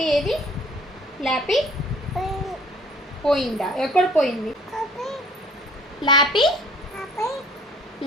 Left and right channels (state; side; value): normal; both; correlation 0.53